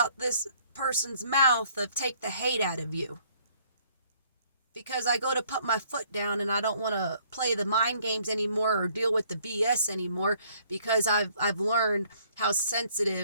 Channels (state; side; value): inverted; both; correlation -0.62